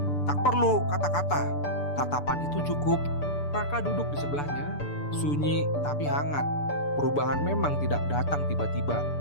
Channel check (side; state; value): right; late; 6.9 ms